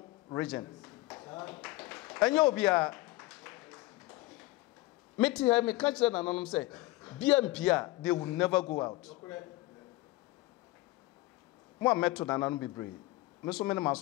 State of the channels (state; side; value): quieter; right; 19.6 dB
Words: region ɛnyɛ obia meti ha me ka kyerɛ nananom sɛ BMP a they will never go out mo ameto nananom bebree me so me ne